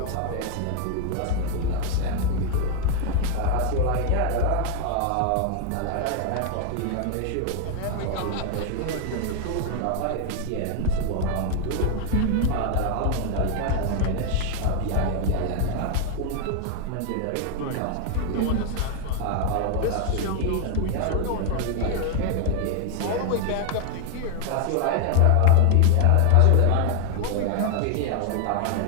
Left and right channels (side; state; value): both; different; correlation 0.00